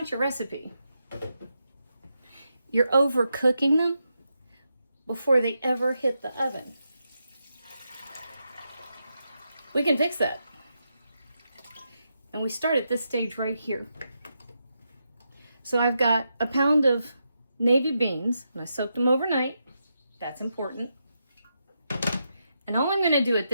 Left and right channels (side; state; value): both; inverted; correlation -0.85